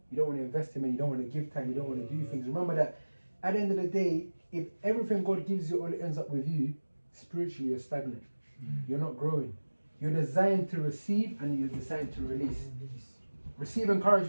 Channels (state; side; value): inverted; both; correlation -1.00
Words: You don't want to invest in it, you don't want to give time, you don't want to do things. Remember that at the end of the day, if everything God gives you only ends up with you, spiritually you're stagnant. You're not growing. You're designed to receive and you're designed to release. Receive